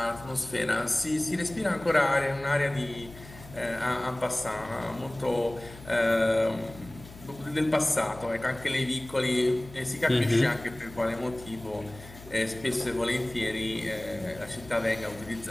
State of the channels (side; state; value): left; noise; hum, 18 dB below the sound